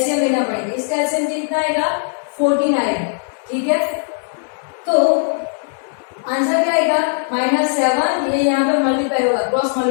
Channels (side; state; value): right; silent; digital silence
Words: लेना पड़ेगा। इसका एलसीएम कितना आएगा 14 आएगा। ठीक है, तो आंसर क्या आएगा -7, ये यहाँ पे मल्टीप्लाई होगा, cross